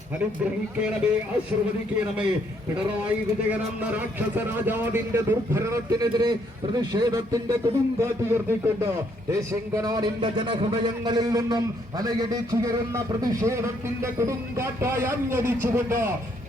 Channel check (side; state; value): both; normal; correlation 0.70